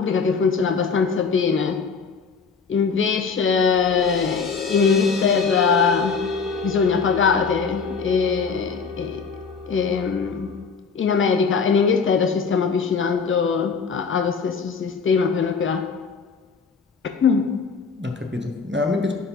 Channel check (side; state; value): right; quieter; 5.3 dB